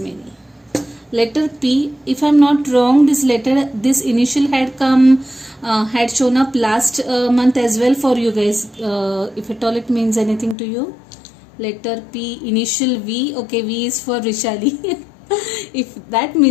Letter P. If I'm not wrong, this initial had come, had shown up last month as well for you guys. If at all it means anything to you. Letter P, initial V. Okay, V is for Rishali. If that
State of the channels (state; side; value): drops out; right; at 10.6 s